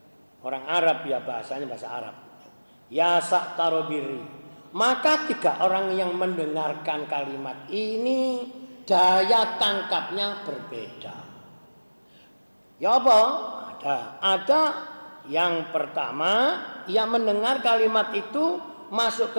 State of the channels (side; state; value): both; inverted; correlation -1.00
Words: orang Arab ya, bahasanya bahasa Arab. Ya saktarobiri. Maka 3 orang yang mendengarkan kalimat ini daya tangkapnya berbeda. Ya apa? Ada yang pertama, ia mendengar kalimat itu masuk